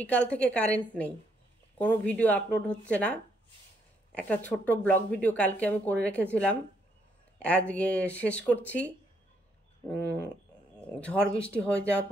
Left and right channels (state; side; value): normal; both; correlation 0.73